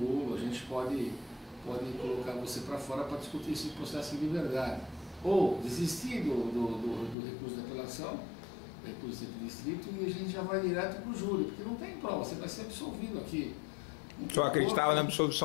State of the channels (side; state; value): right; drops out; at 7.2 s